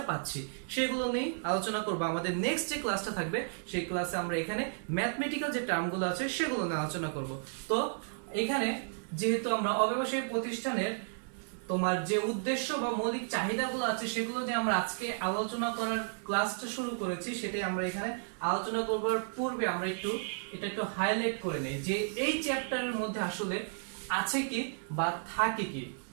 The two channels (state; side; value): silent; left; digital silence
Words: পাচ্ছি, সেগুলো নিয়ে আলোচনা করব। আমাদের নেক্সট যে ক্লাসটা থাকবে, সেই ক্লাসে আমরা এখানে ম্যাথমেটিক্যাল যে টার্মগুলো আছে, সেগুলো নিয়ে আলোচনা করব। তো এখানে যেহেতু আমরা অব্যবসায়ী প্রতিষ্ঠানের তোমার যে উদ্দেশ্য বা মৌলিক চাহিদাগুলো আছে, সেগুলো নিয়ে আমরা আজকে আলোচনা করার ক্লাসটা শুরু করেছি, সেটাই আমরা এখানে আলোচনা করবার পূর্বে আমরা এটা একটু হাইলাইট করে নেই যে এই চ্যাপ্টারের মধ্যে আসলে আছে কি বা থাকে কি।